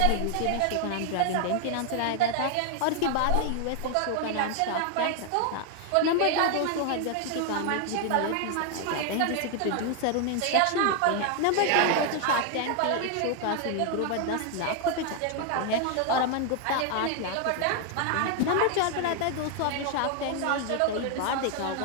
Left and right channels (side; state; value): both; different; correlation 0.00